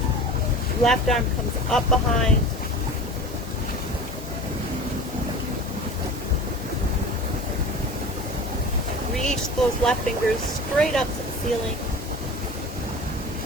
Left arm comes up behind. Reach those left fingers straight up to the ceiling.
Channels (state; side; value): normal; both; correlation 0.36